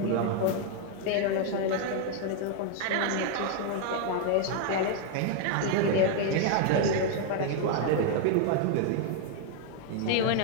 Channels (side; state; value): both; different; correlation 0.00